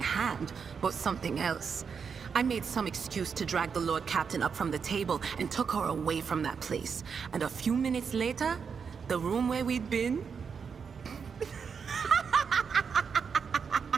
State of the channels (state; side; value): quieter; left; 6.2 dB